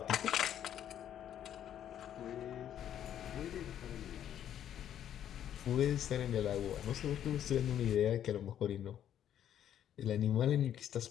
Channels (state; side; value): quieter; right; 10.3 dB